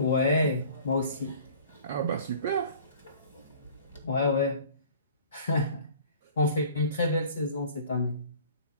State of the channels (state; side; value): inverted; both; correlation -0.47